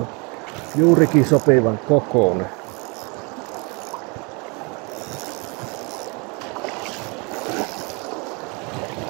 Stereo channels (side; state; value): left; quieter; 30.7 dB